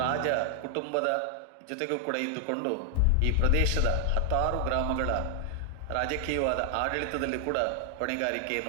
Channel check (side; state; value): both; different; correlation 0.00